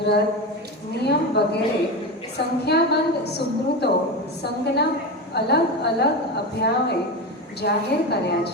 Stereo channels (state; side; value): normal; both; correlation 0.20